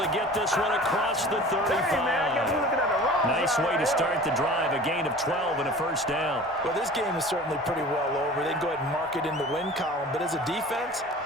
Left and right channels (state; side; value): normal; both; correlation 0.41